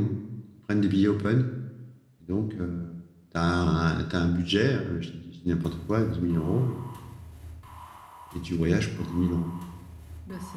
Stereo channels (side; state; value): both; identical; correlation 1.00